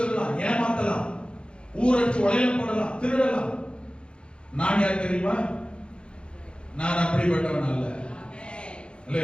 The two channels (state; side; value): late; right; 0.056 ms